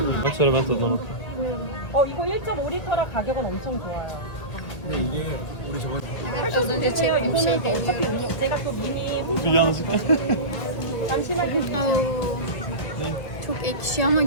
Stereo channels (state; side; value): late; right; 2.0 ms